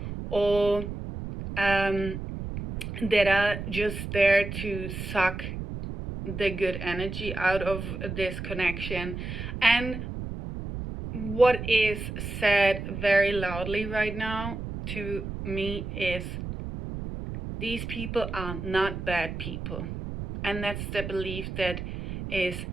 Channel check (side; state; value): right; noise; rumble, 7 dB below the sound